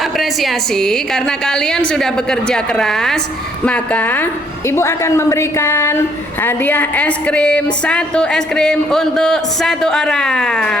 karena kalian sudah bekerja keras, maka ibu akan memberikan hadiah es krim, 1 es krim untuk 1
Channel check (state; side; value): normal; both; correlation 0.67